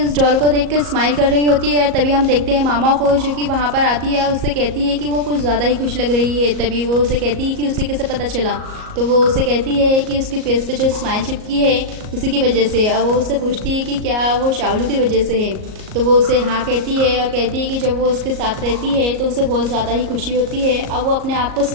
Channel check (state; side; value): late; left; 38 ms